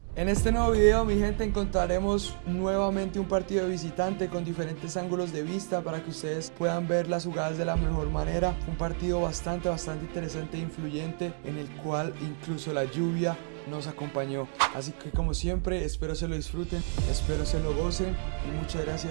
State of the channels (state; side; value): silent; left; 58 dB below the other